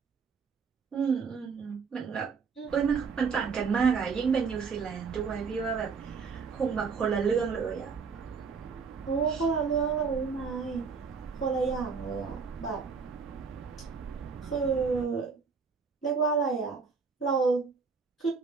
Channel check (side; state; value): left; quieter; 5.4 dB